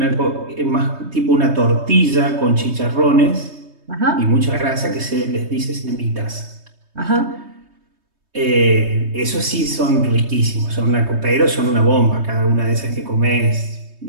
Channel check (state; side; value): late; left; 3.2 ms